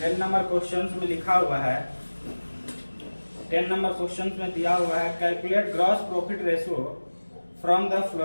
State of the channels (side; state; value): both; inverted; correlation -1.00